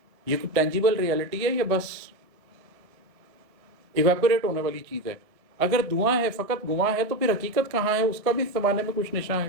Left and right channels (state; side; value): late; left; 1.6 ms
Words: یہ کوئی ٹینجیبل ریئلٹی ہے یا بس ایویپوریٹ ہونے والی چیز ہے؟ اگر دعا ہے، فقط گواہ ہے، تو پھر حقیقت کہاں ہے، اس کا بھی اس زمانے میں کچھ نشاں ہے۔